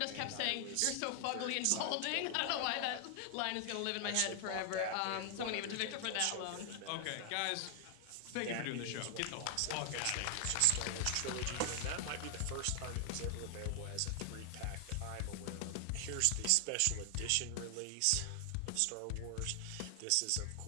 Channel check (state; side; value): different; both; correlation 0.00